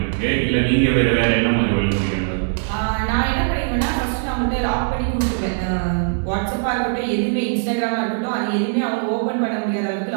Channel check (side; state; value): left; silent; digital silence